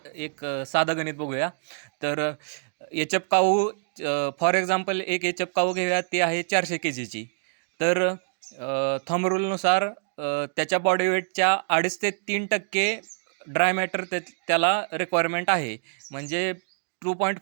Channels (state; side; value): silent; left; digital silence